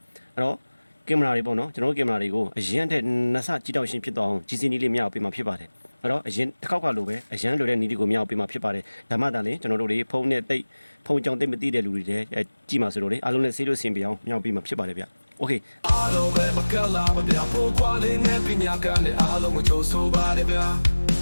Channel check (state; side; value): inverted; both; correlation -1.00